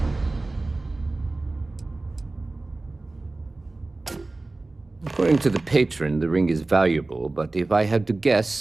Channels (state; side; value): quieter; left; 3.1 dB